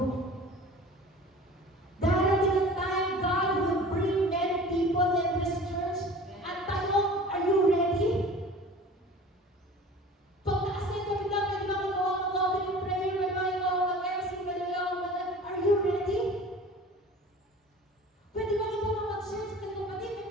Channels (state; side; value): normal; both; correlation 0.42